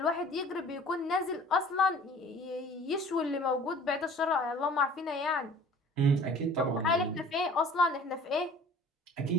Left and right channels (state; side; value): normal; both; correlation 0.48